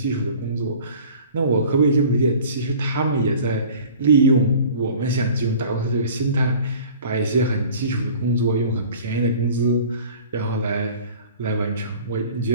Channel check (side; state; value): both; inverted; correlation -0.46